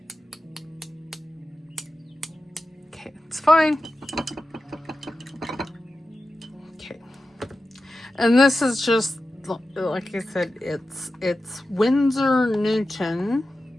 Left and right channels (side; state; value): both; normal; correlation 0.93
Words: Okay, it's fine. Okay. And this is just, like I said, it's Winsor Newton